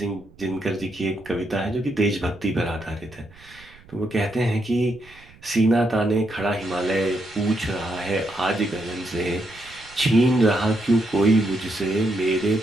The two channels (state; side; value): noise; right; rumble, 24 dB below the sound